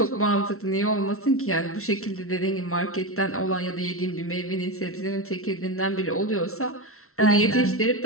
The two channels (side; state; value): right; late; 0.63 ms